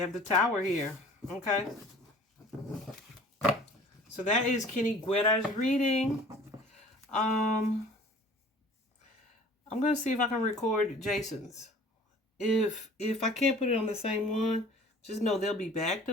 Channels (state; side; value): normal; both; correlation 0.48